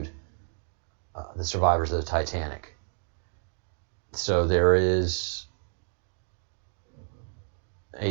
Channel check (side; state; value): left; silent; digital silence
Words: the survivors of the Titanic. So there is